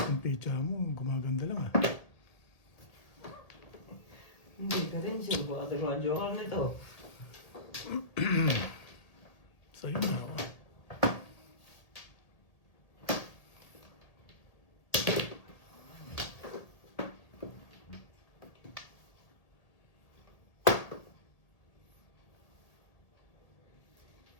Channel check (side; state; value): right; late; 1.8 ms